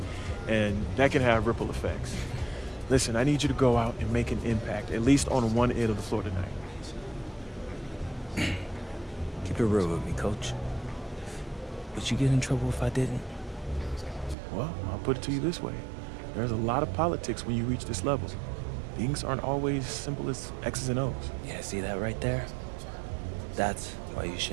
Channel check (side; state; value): left; drops out; at 14.4 s